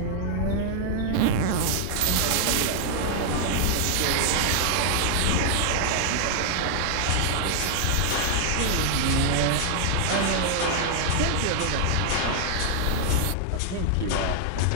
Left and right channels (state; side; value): different; both; correlation 0.00